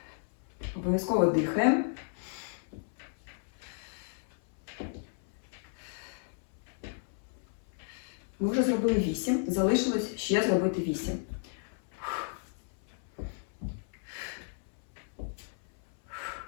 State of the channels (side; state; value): right; silent; 56 dB below the other